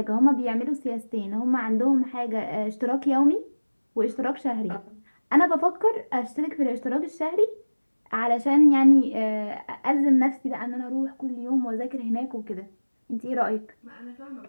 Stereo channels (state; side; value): inverted; both; correlation -1.00